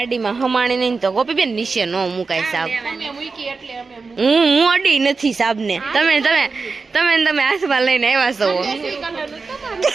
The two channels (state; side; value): quieter; left; 4.4 dB